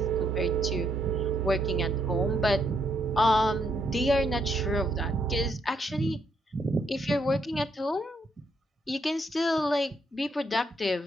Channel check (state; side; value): normal; both; correlation 0.74